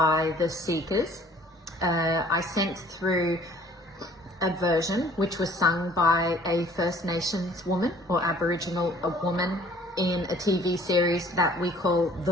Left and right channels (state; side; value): normal; both; correlation 0.54